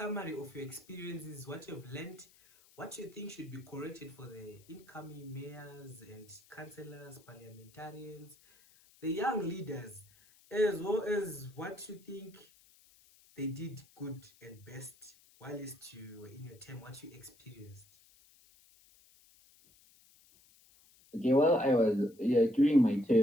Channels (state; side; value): noise; left; hiss, 27 dB below the sound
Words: of your experiences, what you've learned, what you think should be corrected for the incoming mayors and councillors, parliamentarians, the young leaders, as well as what you think they did good and best whilst you were in your term, what you experienced. Okay, well, during my